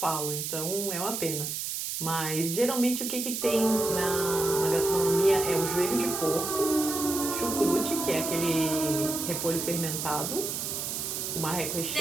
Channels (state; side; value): noise; right; hiss, 3 dB below the sound